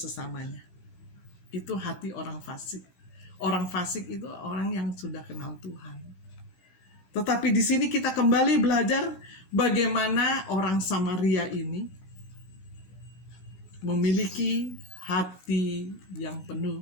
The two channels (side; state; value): right; late; 16 ms